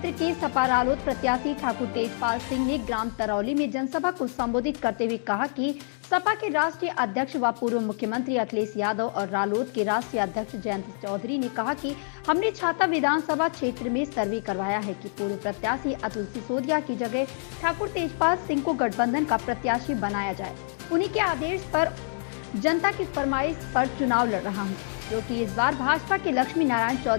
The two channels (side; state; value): right; silent; digital silence